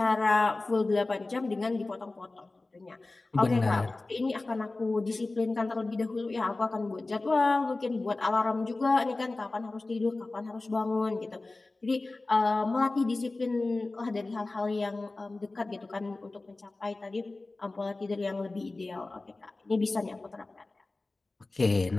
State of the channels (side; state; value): right; quieter; 3.2 dB